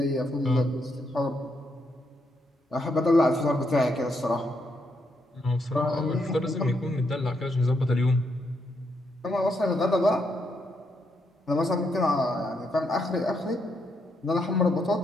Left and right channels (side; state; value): both; normal; correlation 0.78